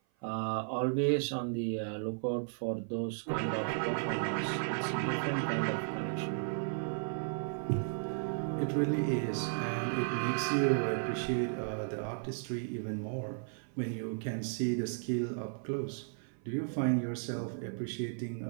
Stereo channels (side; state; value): left; silent; 55 dB below the other